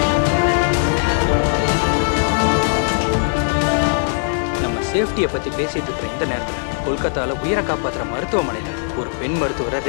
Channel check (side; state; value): right; silent; 66 dB below the other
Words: நம்ம சேஃப்டியை பத்தி பேசிட்டு இருக்கிற இந்த நேரத்துல கொல்கத்தால உயிரை காப்பாத்துற மருத்துவமனையில ஒரு பெண் மருத்துவரை